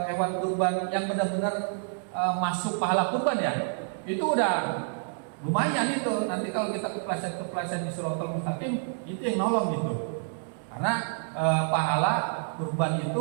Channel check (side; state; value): left; silent; digital silence